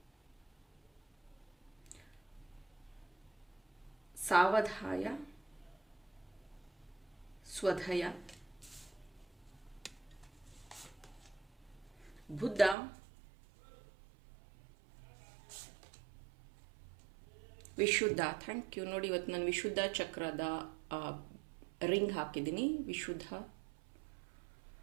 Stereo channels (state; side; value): drops out; left; at 12.8 s